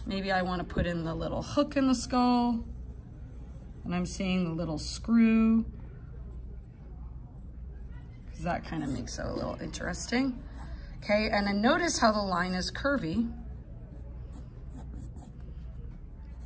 Maybe I want to put in the little hook in the skull and I'm seeing the little screw because that kind of makes it a little interesting. Okay, and then notice how the line is curvy.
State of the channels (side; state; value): both; identical; correlation 1.00